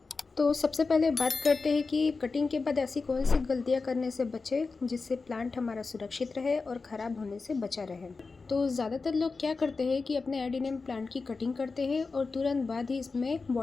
तो सबसे पहले बात करते हैं कि कटिंग के बाद ऐसी कौन सी गलतियां करने से बचे जिससे प्लांट हमारा सुरक्षित रहे और ख़राब होने से बचा रहे। तो ज़्यादातर लोग क्या करते हैं कि अपने एडिनियम प्लांट की कटिंग करते हैं और तुरंत बाद ही इसमें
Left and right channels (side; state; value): right; quieter; 4.2 dB